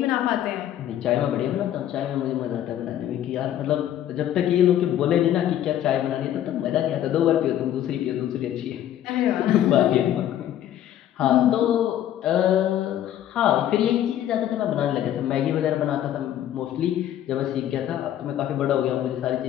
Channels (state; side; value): quieter; right; 11.5 dB